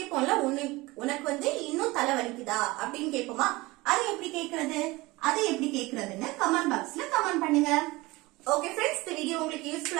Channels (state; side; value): quieter; left; 21.5 dB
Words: உனக்கு வந்து இன்னும் தலைவலிக்குதா அப்படின்னு கேட்போமா? அது எப்படி கேக்குறதுன்னு கமெண்ட் பாக்ஸ்ல கமெண்ட் பண்ணுங்க. ஓகே ஃப்ரெண்ட்ஸ், இந்த வீடியோ உங்களுக்கு